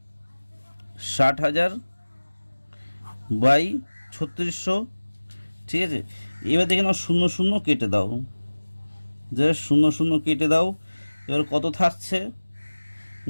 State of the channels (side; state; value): both; inverted; correlation -1.00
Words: 60,000 / 3600, ঠিক আছে। এবার দেখে নাও 0 কেটে দাও, যে 0 কেটে দাও, এবার কত থাকছে